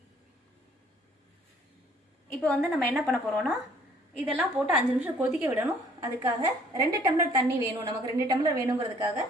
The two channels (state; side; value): normal; both; correlation 0.59